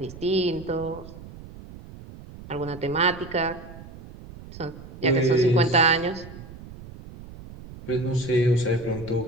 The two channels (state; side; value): noise; right; rumble, 16 dB below the sound